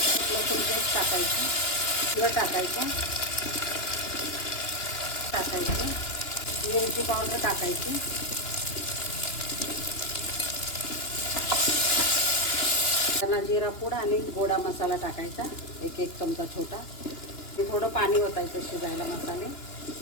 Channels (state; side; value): late; right; 2.9 ms